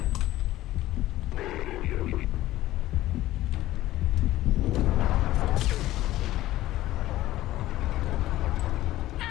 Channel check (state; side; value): quieter; right; 15.4 dB